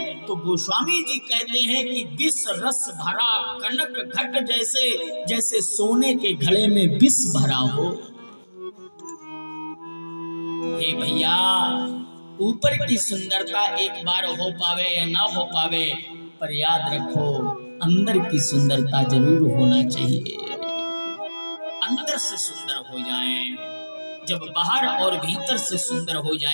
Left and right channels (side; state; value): both; inverted; correlation -1.00